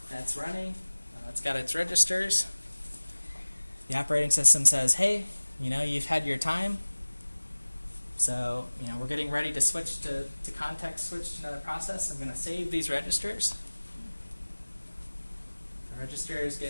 that's running. It's got its registers. The operating system says, hey, you've had your time. So, we're getting ready to switch to context switch to another process. I'm going to save these registers. The registers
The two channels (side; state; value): both; inverted; correlation -1.00